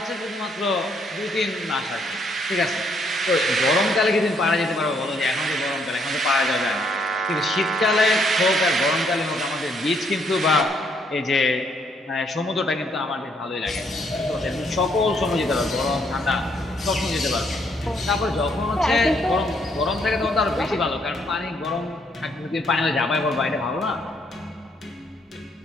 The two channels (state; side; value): normal; both; correlation 0.71